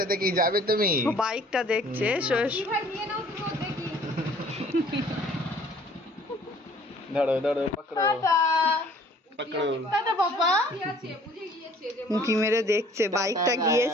কি যাবে তুমি ও বাইকটা দেখছে, এসো এসো। ভাই নিয়ে নাও তুমি, দেখি ধরো ধরো পকড়ো টাটা পকড়ো টাটা বাবা। কি আছে বুঝে গিয়েছে যে উঁকি মেরে দেখছে, বাইকটা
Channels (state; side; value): normal; both; correlation 0.55